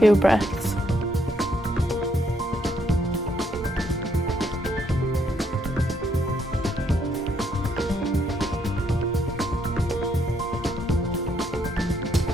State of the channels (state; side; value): normal; both; correlation 0.72